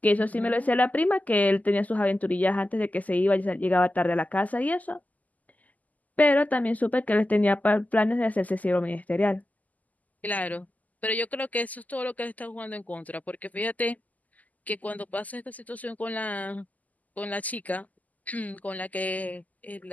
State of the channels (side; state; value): right; late; 0.078 ms